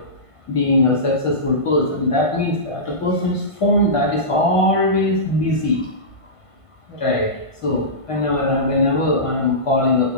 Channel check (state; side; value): late; right; 1.5 ms